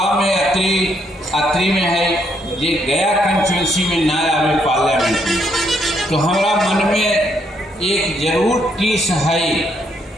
में अत्रि में है। ये गया कंस्टिट्यूंसी में ना आवे पार्लियामेंट में, तो हमारा मन में एक जरूर टीस है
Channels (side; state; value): both; normal; correlation 0.73